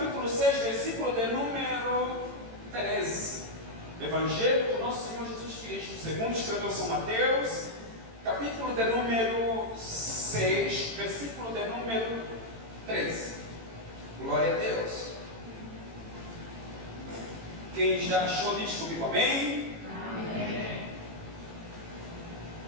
6, versículo de número 13. Evangelho do nosso Senhor Jesus Cristo, segundo escreveu São Mateus, capítulo de número 6, versículo de número 13. Glória a Deus. Quem já achou diz comigo, amém? Amém.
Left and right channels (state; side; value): late; left; 18 ms